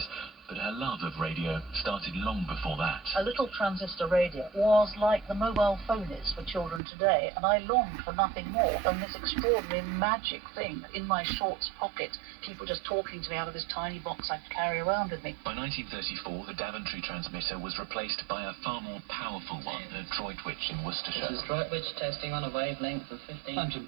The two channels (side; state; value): left; drops out; at 6.8 s